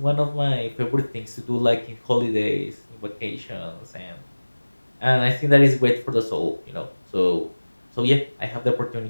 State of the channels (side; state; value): both; inverted; correlation -1.00